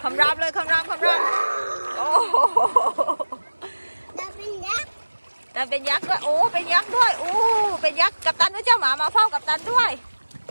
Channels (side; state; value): both; inverted; correlation -1.00